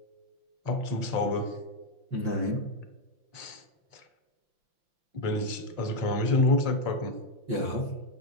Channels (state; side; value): late; left; 5.8 ms